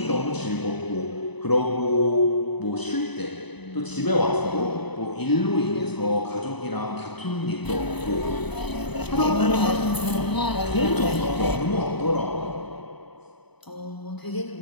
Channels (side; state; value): right; late; 0.99 ms